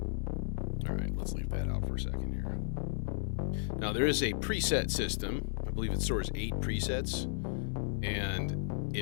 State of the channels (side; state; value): right; silent; digital silence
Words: All right, let's leave that out for a second here. Now, there is a preset system. I believe it stores 8 presets, and